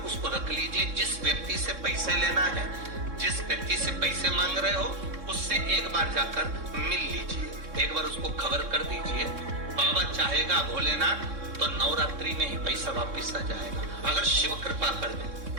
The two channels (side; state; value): left; late; 3.6 ms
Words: उसको रख लीजिए। जिस व्यक्ति से पैसे लेना है, जिस व्यक्ति से पैसे मांग रहे हो, उससे एक बार जाकर मिल लीजिए, एक बार उसको खबर कर दीजिए। बाबा चाहेगा भोलेनाथ तो नवरात्रि में ही पैसा वापिस आ जाएगा, अगर शिव कृपा कर दे।